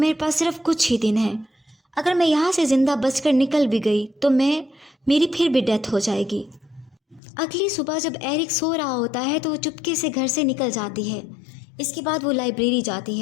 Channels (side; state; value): right; drops out; at 7.2 s